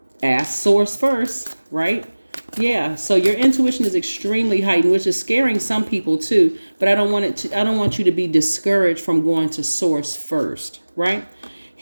ask source first, right? Yeah. So your intuition is extremely heightened, which is scaring some people too. But I don't want you to be discouraged from going to source first, right?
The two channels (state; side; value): inverted; both; correlation -1.00